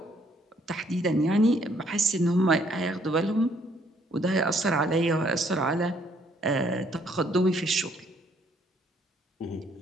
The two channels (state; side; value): normal; both; correlation 0.66